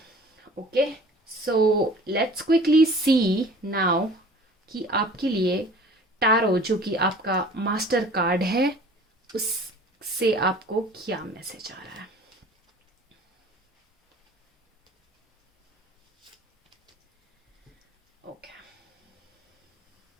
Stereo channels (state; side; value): normal; both; correlation 0.47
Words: okay. So let's quickly see now कि आपके लिए टैरो जो कि आपका मास्टर कार्ड है उससे आपको क्या मैसेज आ रहा है। ओके,